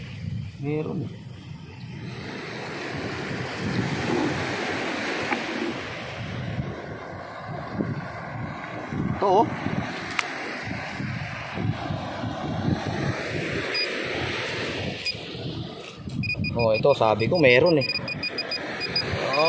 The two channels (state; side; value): identical; both; correlation 1.00